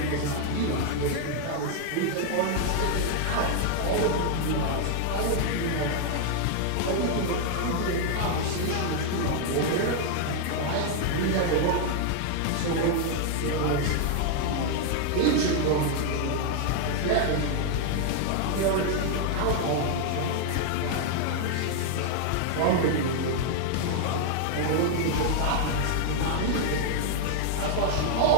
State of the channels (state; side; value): different; both; correlation 0.00